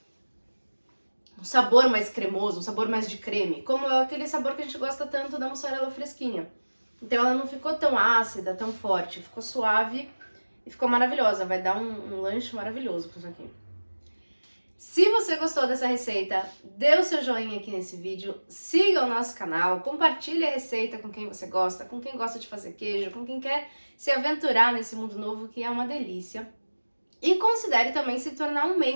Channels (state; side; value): inverted; both; correlation -1.00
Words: mais cremoso, um sabor mais de creme. Como é aquele sabor que a gente gosta tanto da mussarela fresquinha. Então ela não ficou tão ácida, tão forte. Ficou suave e ficou maravilhosa. Vai dar um lanche maravilhoso com isso aqui. Se você gostou dessa receita, dê o seu joinha aqui nesse vídeo, siga o nosso canal, compartilhe a receita com quem você gosta, com quem gosta de fazer queijo, com quem quer se aventurar nesse mundo novo que é uma delícia. E considere também se tornar um